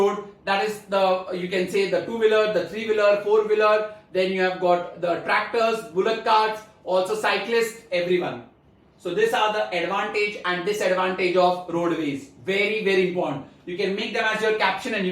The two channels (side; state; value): both; identical; correlation 1.00